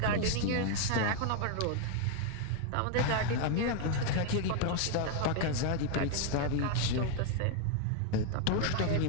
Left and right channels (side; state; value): both; different; correlation 0.00